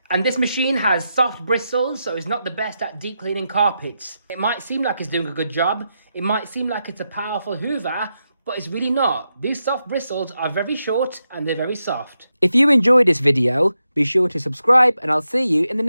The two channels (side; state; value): both; inverted; correlation -0.86